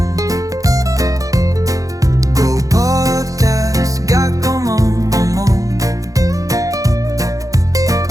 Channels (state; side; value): late; left; 0.17 ms